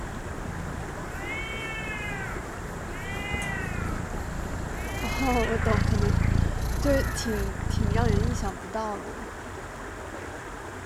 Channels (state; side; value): identical; both; correlation 1.00